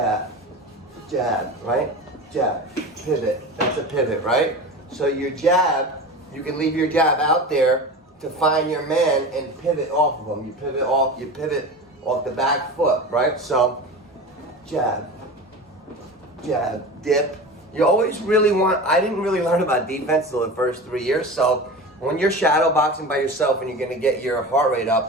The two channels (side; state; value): both; normal; correlation 0.30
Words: jab, right? Jab, pivot. That's a pivot, right? So your jab, you can leave your jab out there to find your man and pivot off of him. You pivot off the back foot, right? So jab, jab, dip. You always really I didn't really learn about defense till the first 3 years. So when you're shadow boxing by yourself and you're gonna get your heart rate